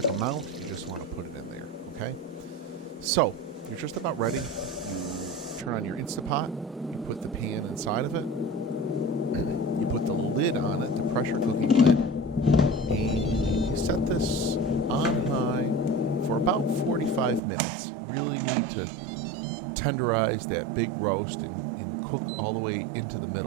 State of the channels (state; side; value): drops out; left; at 17.4 s